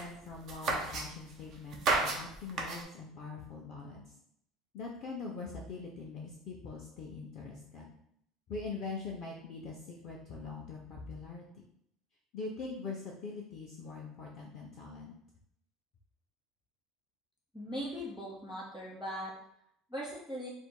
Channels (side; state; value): both; normal; correlation 0.36